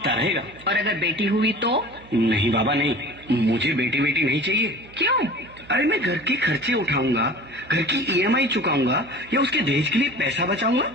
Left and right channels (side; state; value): right; noise; hum, 22 dB below the sound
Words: रहेगा। और अगर बेटी हुई तो? नहीं बाबा नहीं, मुझे बेटी बेटी नहीं चाहिए। क्यों? अरे मैं घर के खर्चे उठाऊंगा, घर की ईएमआई चुकाऊंगा या उसके दहेज के लिए पैसा बचाऊंगा।